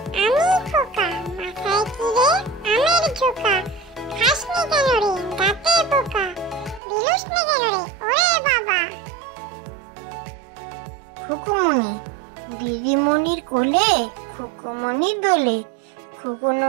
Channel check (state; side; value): drops out; left; at 6.8 s